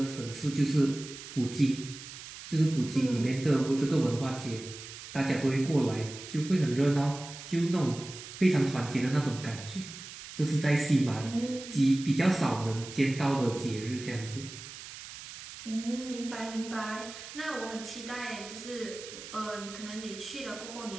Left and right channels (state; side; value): noise; right; hiss, 13 dB below the sound